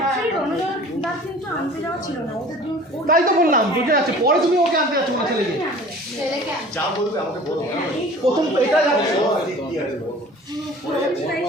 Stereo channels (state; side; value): normal; both; correlation 0.45